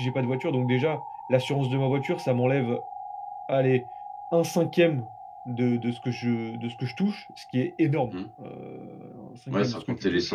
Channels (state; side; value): identical; both; correlation 1.00